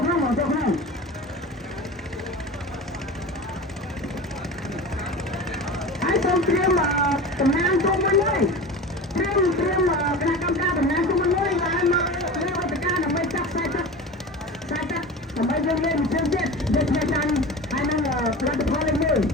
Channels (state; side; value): normal; both; correlation 0.32